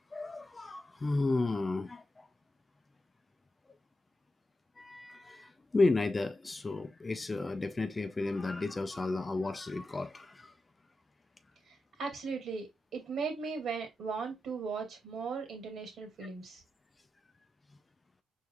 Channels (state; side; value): normal; both; correlation 0.90